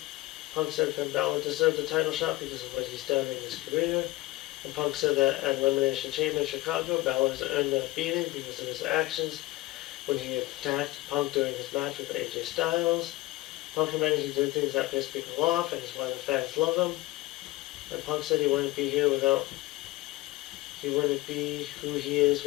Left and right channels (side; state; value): right; quieter; 19.0 dB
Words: Punk said Finn Balor deserved the title shot because of what he's done in his career. And Punk said that at Elimination Chamber in Chicago, Balor has earned a beating because of his actions when he attacked Punk during his match with AJ Styles. Punk admitted he did things that pissed people off and is why the fans love him. And Punk said he wouldn't be who he is